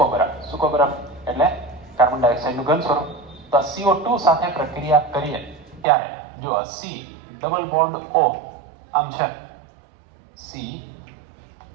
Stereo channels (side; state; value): left; drops out; at 5.9 s